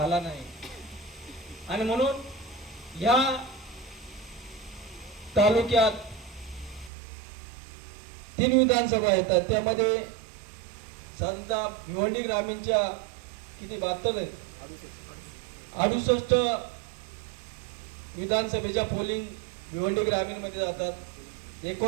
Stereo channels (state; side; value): drops out; left; at 6.9 s